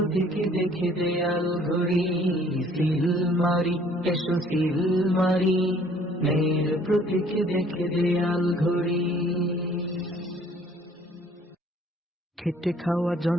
দেখে দেয়াল ঘড়ি। সিল মারি, এসো সিল মারি, ন্যায়ের প্রতীক দেখে দেয়াল ঘড়ি। খেটে খাওয়া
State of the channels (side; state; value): both; normal; correlation 0.58